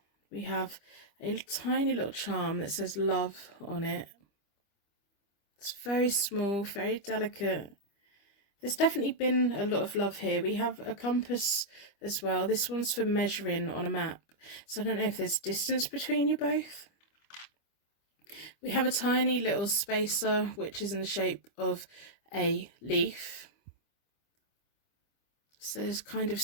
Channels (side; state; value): right; late; 25 ms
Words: We have a tiny little charm that says love on it. It's very small, very delicate. There's definitely been a lot of love here. We have a compass as well. This one's for measuring on a map. So I don't know if there's distance between you both. We have a tiny little spacer, which is in the shape of a leaf. So there's kind of